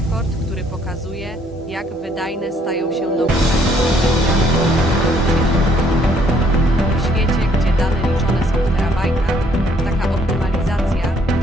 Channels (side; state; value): both; normal; correlation 0.65